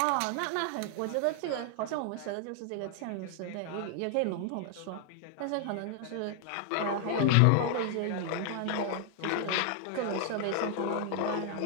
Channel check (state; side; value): different; both; correlation 0.00